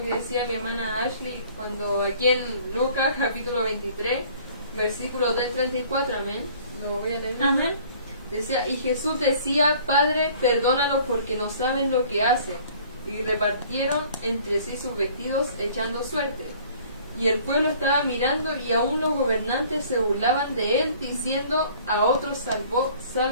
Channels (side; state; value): both; inverted; correlation -0.53